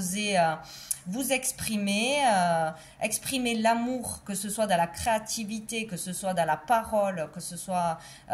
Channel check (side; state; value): both; identical; correlation 1.00